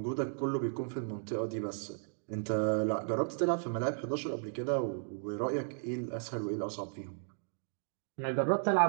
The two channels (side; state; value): left; silent; digital silence